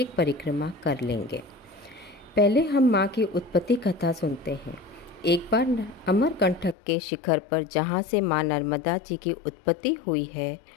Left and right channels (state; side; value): drops out; right; at 6.8 s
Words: परिक्रमा कर लेंगे। पहले हम माँ की उत्पत्ति कथा सुनते हैं। एक बार अमरकंटक के शिखर पर जहाँ से माँ नर्मदा जी की उत्पत्ति हुई है,